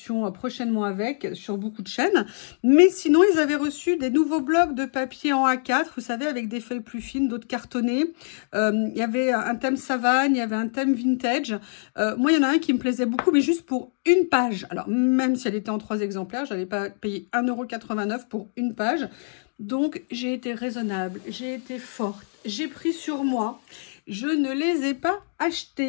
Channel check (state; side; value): silent; right; digital silence